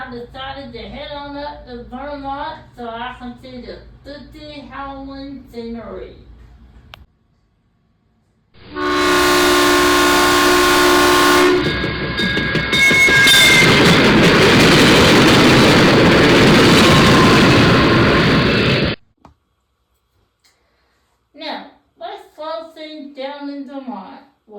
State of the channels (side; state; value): both; identical; correlation 1.00